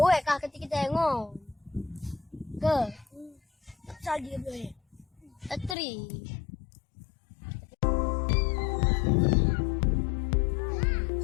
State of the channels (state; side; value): drops out; right; at 5.8 s